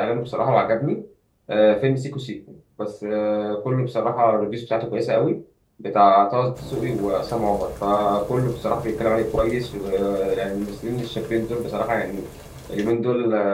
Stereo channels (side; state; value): both; identical; correlation 1.00